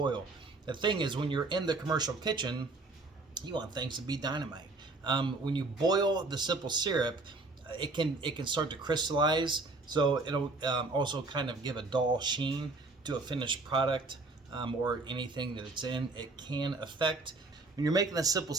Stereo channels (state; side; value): quieter; left; 3.4 dB